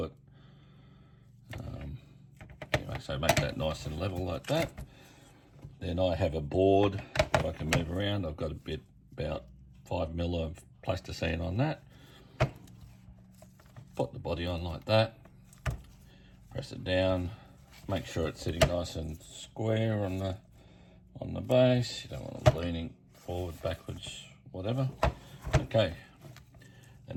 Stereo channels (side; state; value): both; identical; correlation 1.00